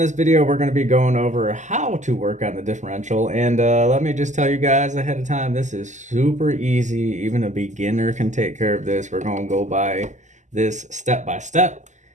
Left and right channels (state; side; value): late; left; 0.34 ms